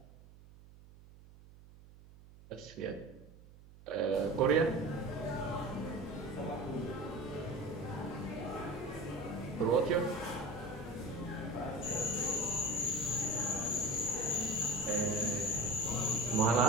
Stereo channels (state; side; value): noise; right; hum, 21 dB below the sound